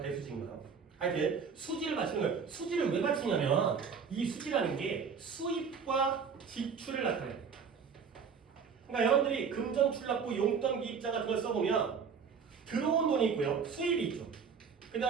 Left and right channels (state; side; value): quieter; left; 6.2 dB